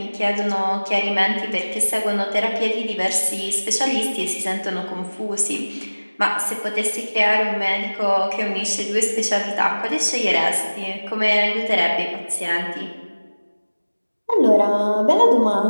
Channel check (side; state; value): both; inverted; correlation -1.00